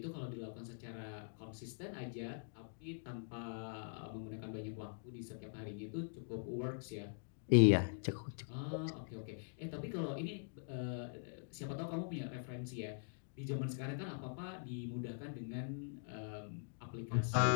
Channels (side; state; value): right; silent; digital silence